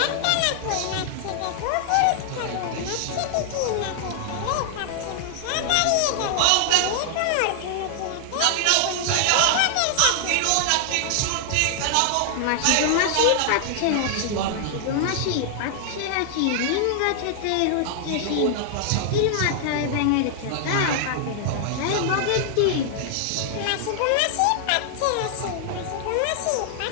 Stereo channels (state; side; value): different; both; correlation 0.00